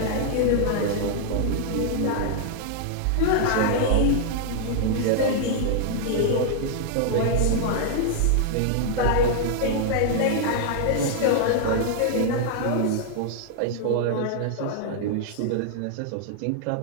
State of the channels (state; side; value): different; both; correlation -0.01